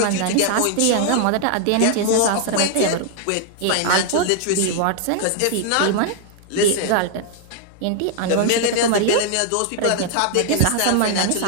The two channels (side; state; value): both; different; correlation 0.00